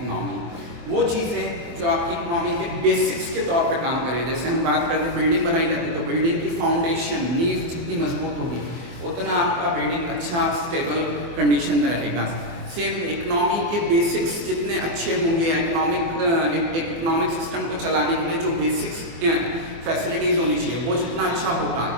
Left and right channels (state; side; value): late; left; 24 ms